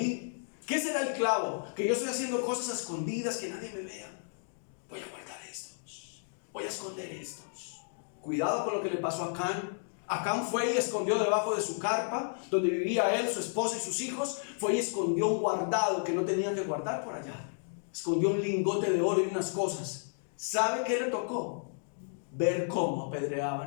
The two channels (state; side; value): silent; right; digital silence